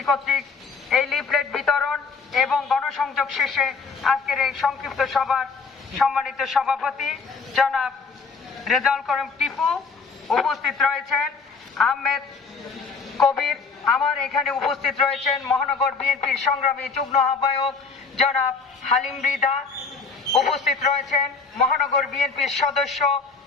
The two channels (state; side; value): quieter; right; 4.8 dB